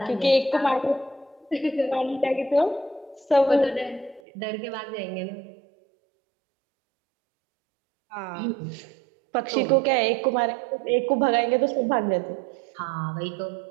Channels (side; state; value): left; drops out; at 4.2 s